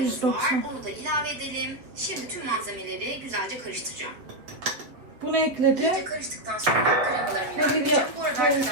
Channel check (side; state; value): left; late; 7.7 ms